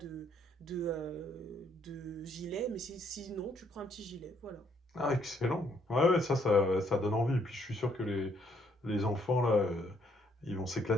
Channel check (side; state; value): both; normal; correlation 0.69